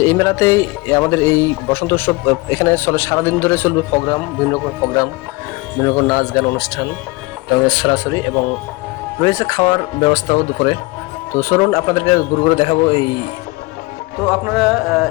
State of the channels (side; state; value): right; quieter; 24.1 dB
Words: এই মেলাতেই আমাদের এই বসন্ত উৎসব এখানে চলে, সারাদিন ধরে চলবে প্রোগ্রাম, বিভিন্ন রকম প্রোগ্রাম, বিভিন্ন রকম নাচ গান অনুষ্ঠান এবং সরাসরি, এবং রয়েছে খাওয়ার ব্যবস্থাও দুপুরে। তো চলুন আপনাদেরকে ঘুরে ঘুরে দেখাবো এই। তো আপনারা